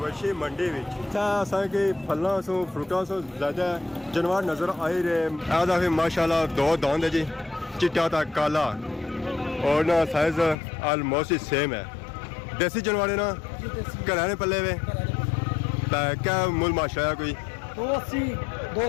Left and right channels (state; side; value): drops out; right; at 10.6 s